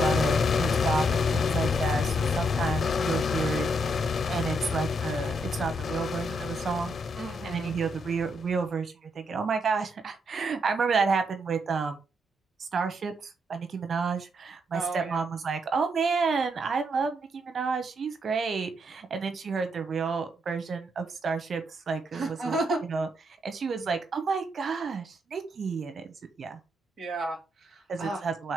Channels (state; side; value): normal; both; correlation 0.77